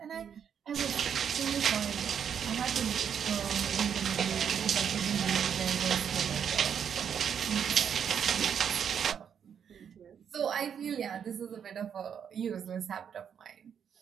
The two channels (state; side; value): quieter; left; 7.9 dB